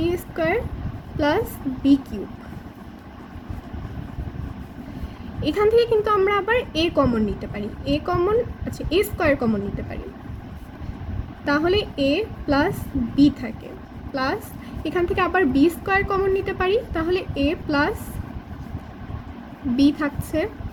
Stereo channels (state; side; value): identical; both; correlation 1.00